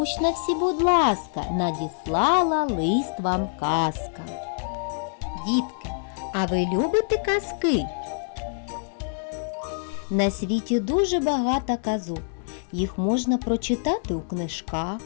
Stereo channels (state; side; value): silent; right; 61 dB below the other